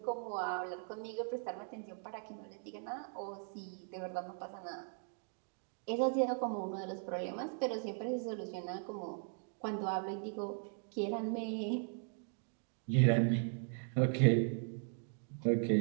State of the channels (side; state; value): left; silent; 52 dB below the other